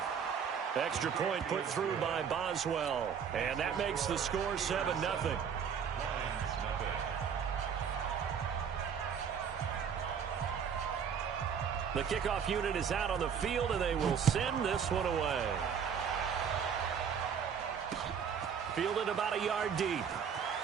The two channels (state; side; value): quieter; left; 7.3 dB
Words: Extra point put through by Boswell. And that makes the score 7-0. The kickoff unit is out on the field, and they will send this one away. Fielded about a yard deep.